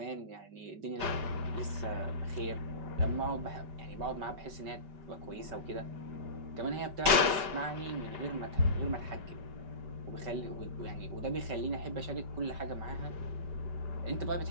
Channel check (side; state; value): left; late; 5.2 ms